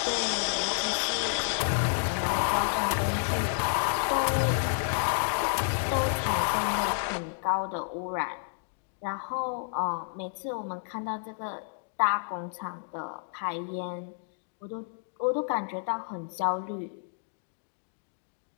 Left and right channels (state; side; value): silent; right; digital silence